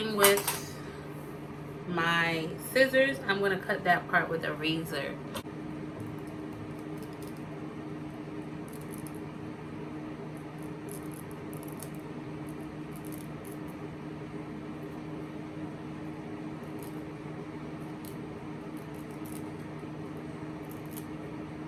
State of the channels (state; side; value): identical; both; correlation 1.00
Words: with my scissors, I'm gonna cut that part with a razor.